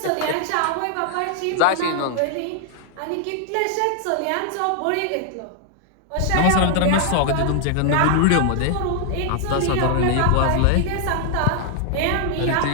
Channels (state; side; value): different; both; correlation 0.00